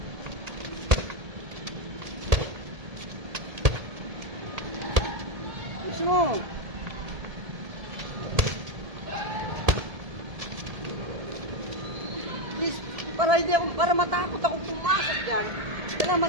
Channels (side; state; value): left; late; 1.7 ms